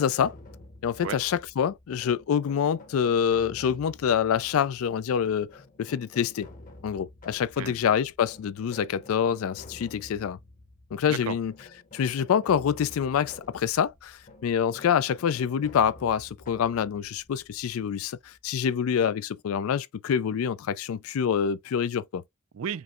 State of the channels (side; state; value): right; quieter; 7.3 dB